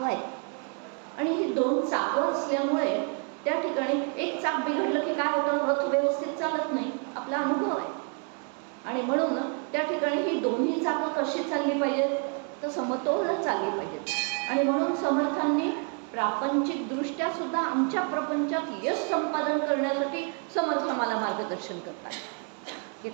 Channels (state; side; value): quieter; left; 37.9 dB